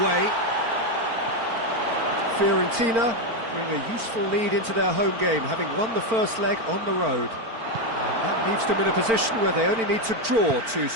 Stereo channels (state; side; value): late; left; 4.4 ms